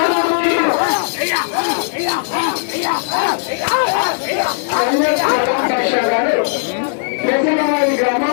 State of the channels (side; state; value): right; silent; digital silence